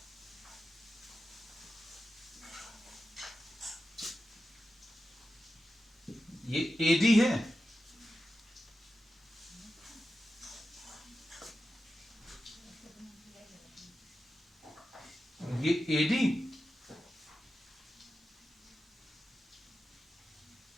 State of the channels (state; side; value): normal; both; correlation 0.91